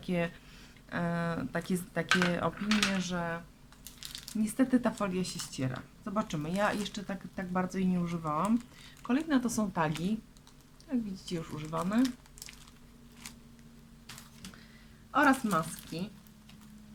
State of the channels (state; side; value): identical; both; correlation 1.00